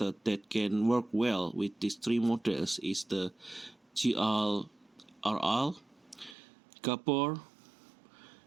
that can work well with these 3 models is the GRL, Gabor,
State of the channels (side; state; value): left; drops out; at 6.4 s